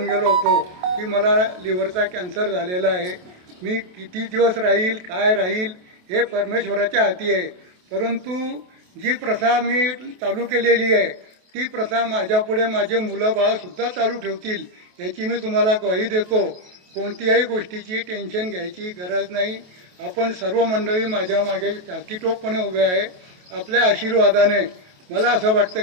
गेलो होतो की मला लिव्हरचा कॅन्सर झालेला आहे. मी किती दिवस राहील काय राहील हे परमेश्वराच्या हाती आहे. परंतु जी प्रथा मी चालू केलेली आहे ती प्रथा माझ्यापुढे माझे मुलं बाळसुद्धा चालू ठेवतील याची मी तुम्हाला ग्वाही देतो. कोणत्याही गोष्टीची टेन्शन घ्यायची गरज नाही. आपण सर्व मंडळी माझ्या मागे टाकीटोपपणे उभे आहे. आपल्या आशीर्वादाने मला असं वाटतं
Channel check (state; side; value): late; left; 28 ms